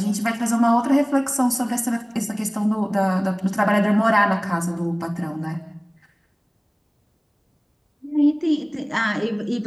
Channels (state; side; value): identical; both; correlation 1.00